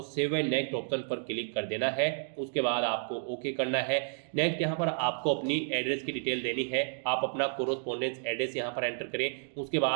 सेव एंड नेक्स्ट ऑप्शन पर क्लिक कर देना है। उसके बाद आपको ओके करना है। नेक्स्ट यहाँ पर आपको अपनी एड्रेस की डिटेल देनी है। आप अपना कोरोस्पोंडेंस एड्रेस यहाँ पर एंटर करें। उसके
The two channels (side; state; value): left; silent; digital silence